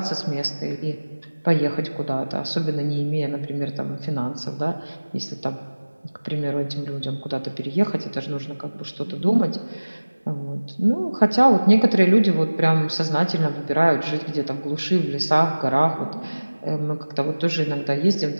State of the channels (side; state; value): both; inverted; correlation -1.00